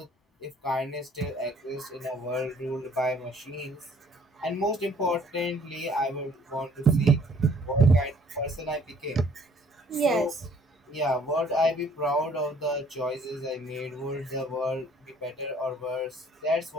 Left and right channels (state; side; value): normal; both; correlation 0.58